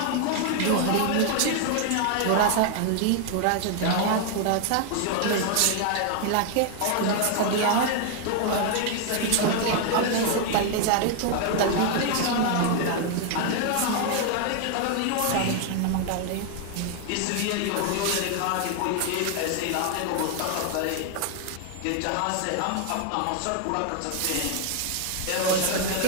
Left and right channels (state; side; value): different; both; correlation 0.00